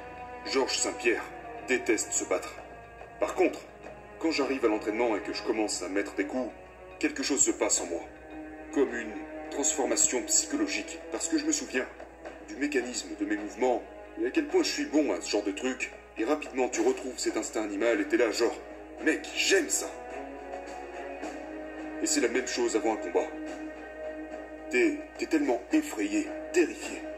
Georges Saint-Pierre déteste se battre. Par contre, quand j'arrive à l'entraînement et que je commence à mettre des coups, quelque chose se passe en moi. Comme une transformation psychologique. Parce que je me souviens du mécanisme de mes mouvements et à quel point je suis bon à ce genre de truc. Et rapidement, tu retrouves cet instinct animal et t'es là genre... Mec, j'aime ça. Et c'est la même chose avant un combat. T'es tellement effrayé, terrifié.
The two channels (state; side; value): identical; both; correlation 1.00